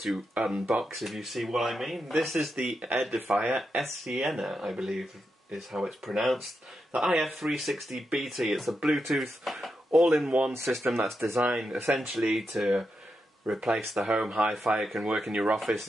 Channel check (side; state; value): both; normal; correlation 0.86